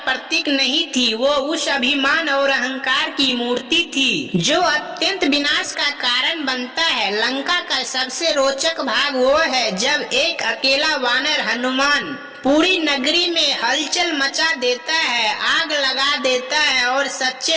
प्रतीक नहीं थी, वो उस अभिमान और अहंकार की मूर्ति थी जो अत्यंत विनाश का कारण बनता है। लंका का सबसे रोचक भाग वो है जब एक अकेला वानर हनुमान पूरी नगरी में हलचल मचा देता है, आग लगा देता है और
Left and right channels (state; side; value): identical; both; correlation 1.00